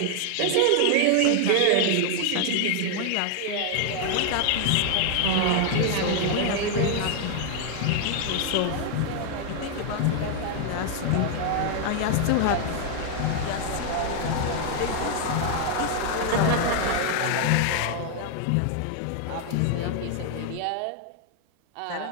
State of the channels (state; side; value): different; both; correlation 0.00